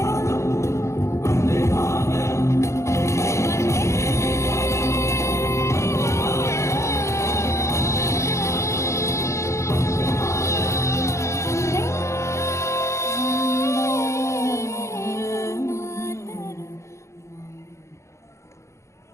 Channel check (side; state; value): right; late; 0.14 ms